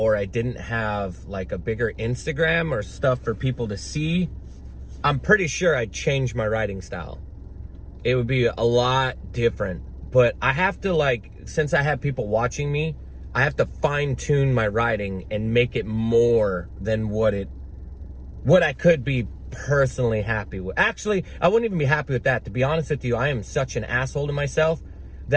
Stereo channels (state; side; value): identical; both; correlation 1.00